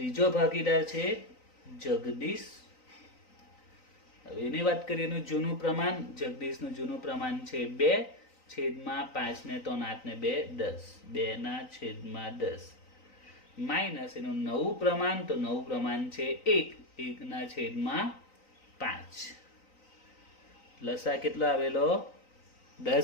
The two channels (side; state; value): right; late; 3.9 ms